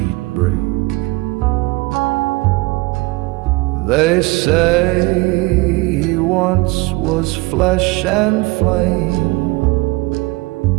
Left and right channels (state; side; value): quieter; left; 22.8 dB